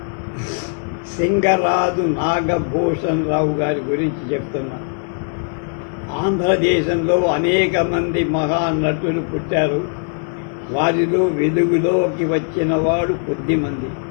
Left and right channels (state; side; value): silent; right; 66 dB below the other